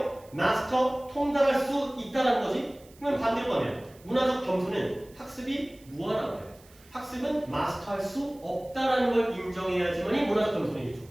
마스터 통달할 수 있다는 거지? 그러면 반대로 가면 문화적 겸손은 학습이 무한한 거예요. 학습은 마스터할 수 없다는 걸 인정해야지만이 문화적 겸손이겠죠.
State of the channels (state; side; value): noise; right; hiss, 26 dB below the sound